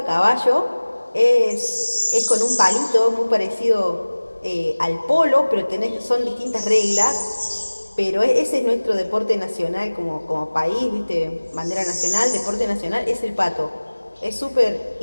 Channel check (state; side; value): inverted; both; correlation -1.00